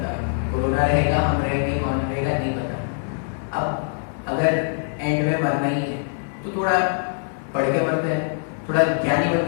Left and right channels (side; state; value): right; silent; digital silence